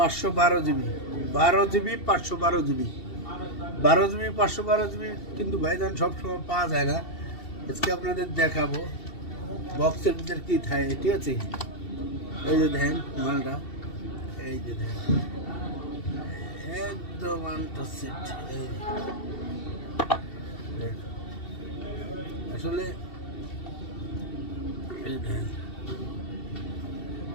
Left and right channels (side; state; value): right; late; 2.7 ms